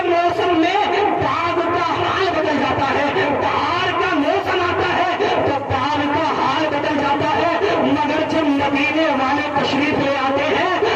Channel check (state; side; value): identical; both; correlation 1.00